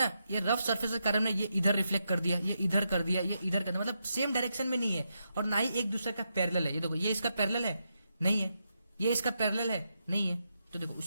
ये रफ सरफेस के कारण ये इधर रिफ्लेक्ट कर दिया, ये इधर कर दिया, ये इधर कर दिया, मतलब सेम डायरेक्शन में नहीं है और ना ही एक दूसरे का पैरेलल है। ये देखो ये इसका पैरेलल है नहीं है, ये इसका पैरेलल है नहीं है। तो देखो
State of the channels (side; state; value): both; inverted; correlation -0.84